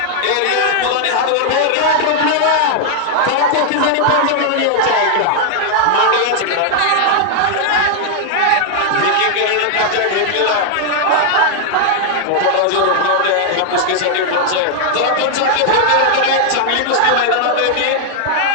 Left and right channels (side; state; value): both; different; correlation 0.00